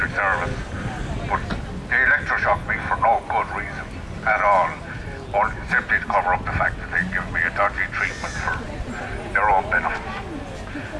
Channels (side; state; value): both; identical; correlation 1.00